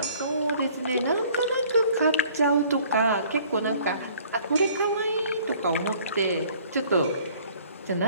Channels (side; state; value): both; inverted; correlation -0.55